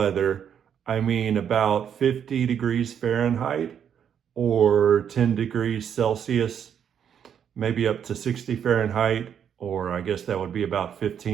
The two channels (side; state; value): left; quieter; 8.4 dB